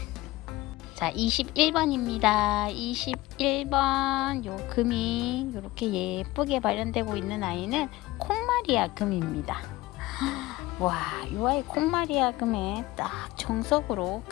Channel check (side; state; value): right; quieter; 18.9 dB